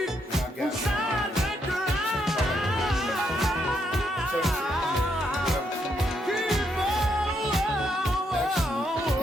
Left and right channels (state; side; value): normal; both; correlation 0.76